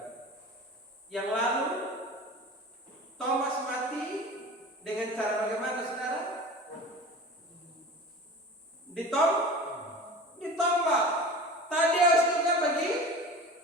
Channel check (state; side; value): normal; both; correlation 0.36